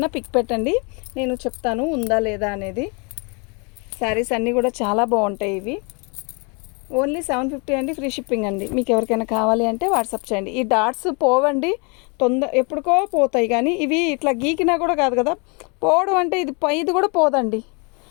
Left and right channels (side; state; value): right; quieter; 32.8 dB